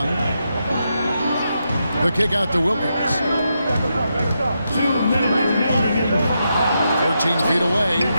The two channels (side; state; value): both; inverted; correlation -0.84